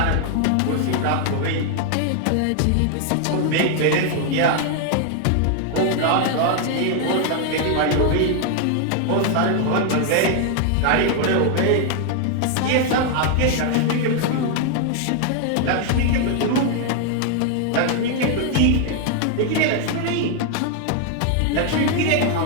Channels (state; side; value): different; both; correlation 0.00